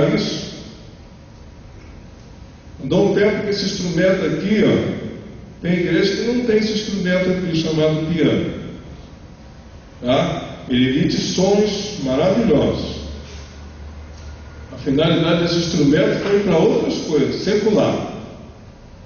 isso? Dou um tempo que esse instrumento aqui, tem igreja que não tem esse instrumento aqui chamado piano. Tá? Ele emite sons maravilhosos. A finalidade desse instrumento foi para outras coisas, secular.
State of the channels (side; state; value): both; identical; correlation 1.00